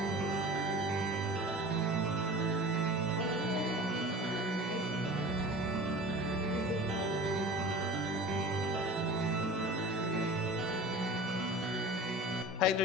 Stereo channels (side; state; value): both; normal; correlation 0.38